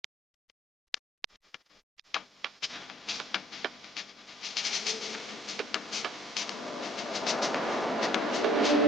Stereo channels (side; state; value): both; normal; correlation 0.62